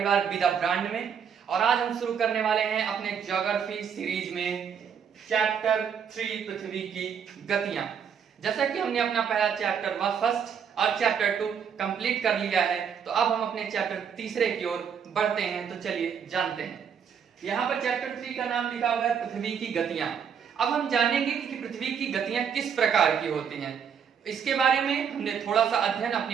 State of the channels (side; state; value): left; quieter; 7.4 dB